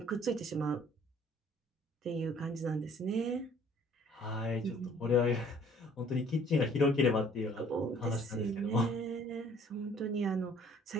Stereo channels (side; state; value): both; normal; correlation 0.56